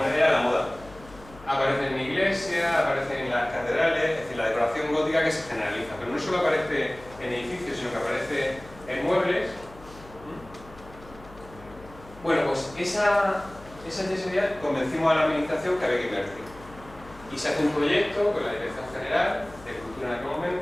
era la moda. Aparece en iglesias, aparece en las catedrales, es decir, la decoración gótica que se generaliza, pero no solo aparece en edificios, sino que aparece en muebles. Bueno, pues esa yesería convencimos a la administración que había que invertir. Y se hace un proyecto con la Dirección General de Cultura en aquel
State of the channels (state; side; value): noise; left; hum, 20 dB below the sound